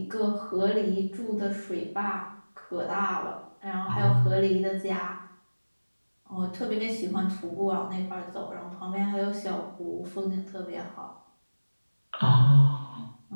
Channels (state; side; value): inverted; both; correlation -1.00